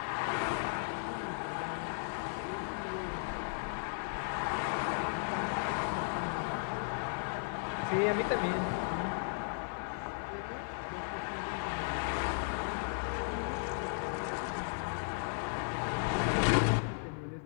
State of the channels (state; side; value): silent; right; 54 dB below the other